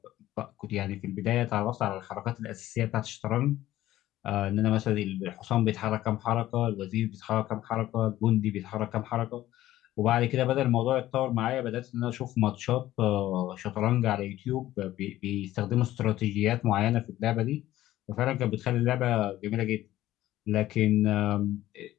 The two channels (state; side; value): quieter; right; 14.6 dB